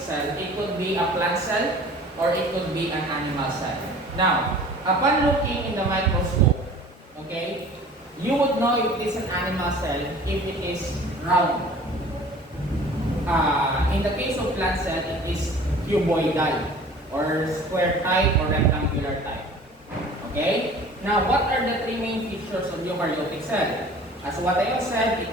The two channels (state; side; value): normal; both; correlation 0.46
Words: cell, it could be a plant cell or it could be an animal cell. Now, upon looking in the microscope, okay, you would know if it is an animal cell if it is round. In the case of plant cell, it is cuboidal or square type or rectangular type. Okay? Now, what are the three main features of eukaryotic cell? As what I have said,